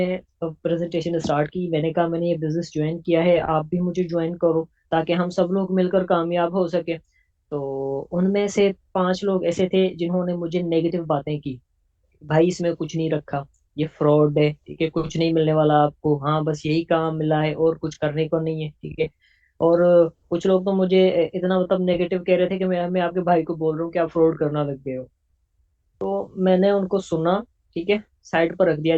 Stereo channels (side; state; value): both; identical; correlation 1.00